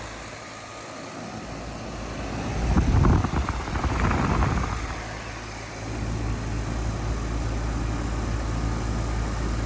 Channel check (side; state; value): both; identical; correlation 1.00